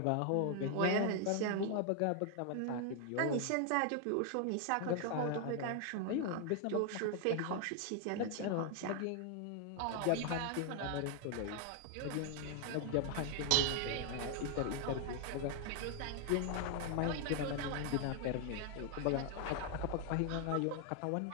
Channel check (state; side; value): different; both; correlation 0.00